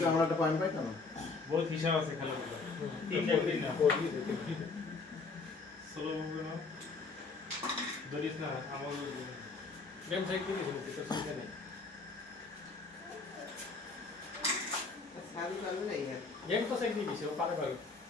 আমরা একটা পয়েন্ট পাইতাম বহুত হিসাব আছে খেলাধুলা তিনটা দিন না সোলো মুভি না ধরিস না আমার গেম চেক করে দিছি তো চিন্তা নেই সারি পারবে না ইয়ার গেম তো চেক দিয়ে দিছি ও পারে পারে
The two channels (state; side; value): quieter; right; 4.1 dB